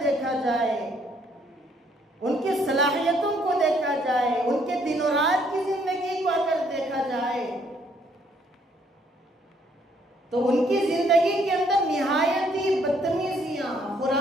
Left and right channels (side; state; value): both; normal; correlation 0.67